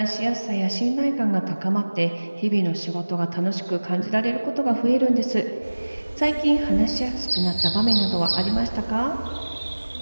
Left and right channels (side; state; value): both; inverted; correlation -1.00